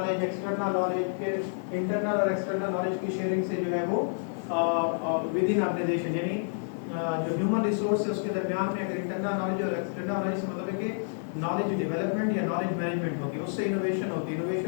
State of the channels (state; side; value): silent; right; digital silence